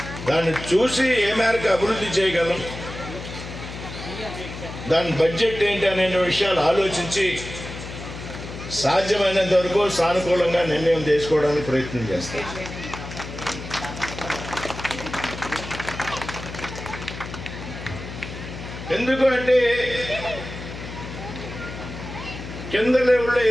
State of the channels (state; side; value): noise; left; hum, 10 dB below the sound